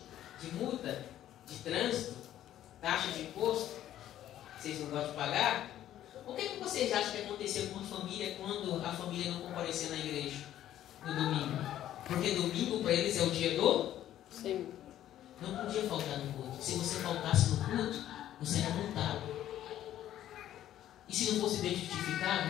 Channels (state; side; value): quieter; right; 12.2 dB